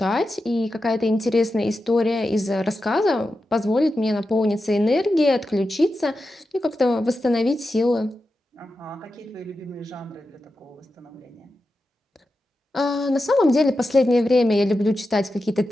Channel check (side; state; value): both; normal; correlation 0.90